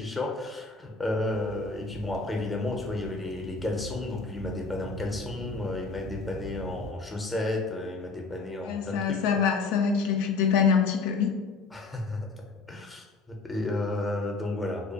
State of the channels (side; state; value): right; quieter; 4.0 dB